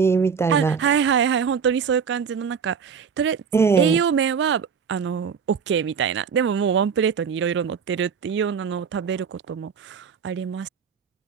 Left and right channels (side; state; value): left; quieter; 6.5 dB